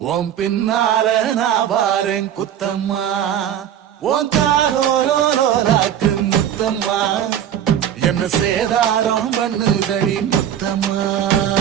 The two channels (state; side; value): quieter; left; 10.0 dB